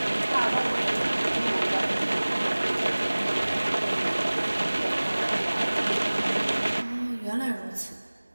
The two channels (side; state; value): both; inverted; correlation -1.00